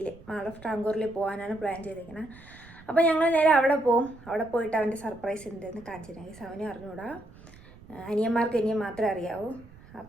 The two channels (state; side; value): noise; right; rumble, 21 dB below the sound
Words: മാൾ ഓഫ് ടാങ്കൂറിൽ പോകാനാണ് പ്ലാൻ ചെയ്തിരിക്കുന്നത്. അപ്പോൾ ഞങ്ങൾ നേരെ അവിടെ പോകും. അവിടെ പോയിട്ട് അവൻ്റെ സർപ്രൈസ് എന്തെന്ന് കാണിച്ചിട്ടുണ്ടെങ്കിൽ അവനെ അറിഞ്ഞുകൂടാ, അനിയന്മാർക്ക് ഇനിയും മാത്രമേ അറിയാവൂ.